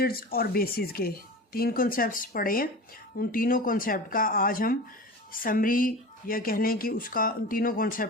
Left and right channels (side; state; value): both; normal; correlation 0.32